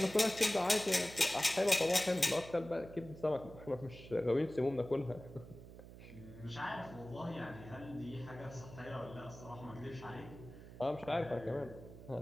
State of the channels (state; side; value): noise; right; hum, 15 dB below the sound